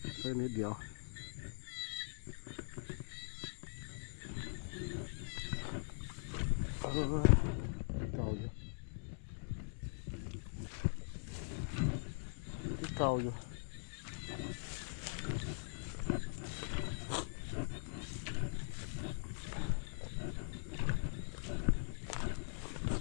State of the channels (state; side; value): silent; right; digital silence